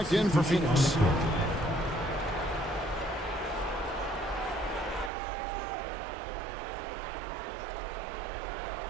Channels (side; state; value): left; drops out; at 5.1 s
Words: in for Phoenix.